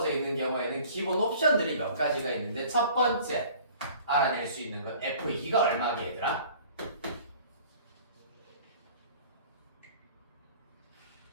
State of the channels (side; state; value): both; inverted; correlation -0.49